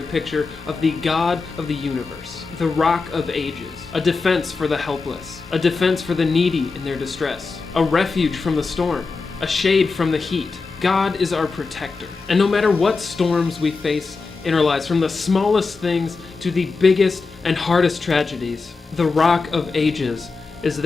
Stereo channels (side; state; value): right; quieter; 4.3 dB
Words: picture of the God of the universe. The Rock of Ages. A defense for the helpless. A defense for the needy in their distress. A refuge from the storm. A shade from the heat. God is our protector. And no matter what storms we face in our lives, from the smallest things to the biggest and hardest tragedies, the Rock of Ages is